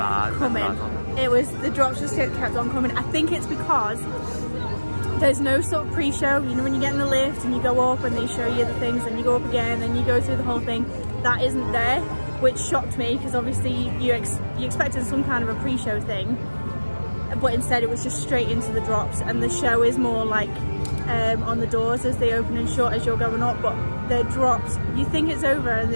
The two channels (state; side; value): inverted; both; correlation -1.00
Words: coming. It was, the drops just kept on coming. I think it's because there's no sort of pre-show. You know, when you get in the lift and you go up and they show you the things and you go up again and you go through the whole thing, that isn't there, which shocked me because obviously you expected some kind of a pre-show thing, but instead it was just straight into the drops, and the show is more like on the doors as they open and shut as you're going up, but the drops, you think it's over and